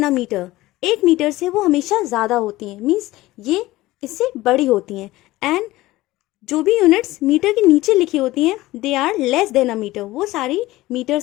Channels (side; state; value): right; quieter; 17.8 dB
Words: a metre. 1 metre से वो हमेशा ज़्यादा होती हैं, मीन्स ये इससे बड़ी होती हैं. एंड जो भी यूनिट्स मीटर के नीचे लिखी होती हैं they are less than a metre, वो सारी मीटर